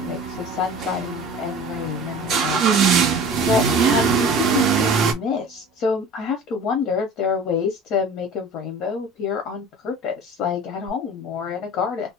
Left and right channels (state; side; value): normal; both; correlation 0.40